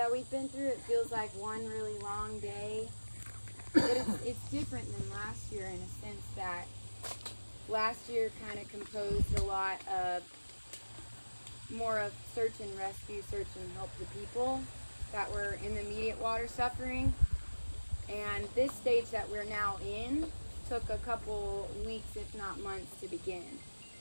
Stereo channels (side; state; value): both; inverted; correlation -1.00